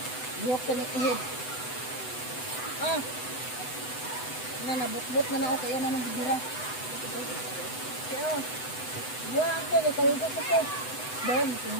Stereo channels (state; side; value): late; right; 7.9 ms